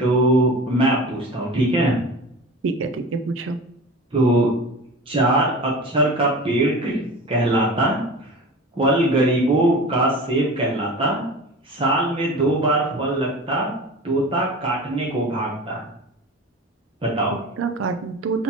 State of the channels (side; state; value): both; normal; correlation 0.35